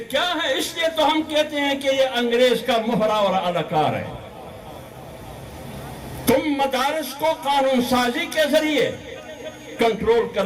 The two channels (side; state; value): both; identical; correlation 1.00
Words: کیا ہے؟ اس لیے تو ہم کہتے ہیں کہ یہ انگریز کا مہرا اور اداکار ہے. تم مدارس کو قانون سازی کے ذریعے کنٹرول